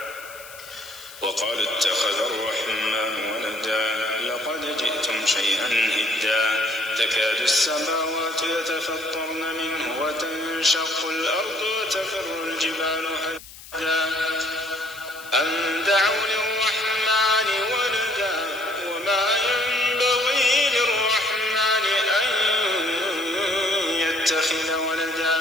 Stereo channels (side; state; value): left; noise; hiss, 17 dB below the sound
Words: وقال اتخذ الرحمن ولدا لقد جئتم شيئا إدا تكاد السماوات يتفطرن منه وتنشق الأرض وتخر الجبال هدا أن دعوا للرحمن ولدا وما ينبغي للرحمن أن يتخذ ولدا